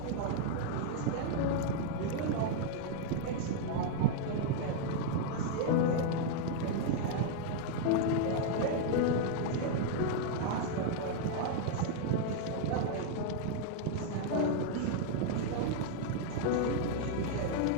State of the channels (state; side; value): different; both; correlation 0.00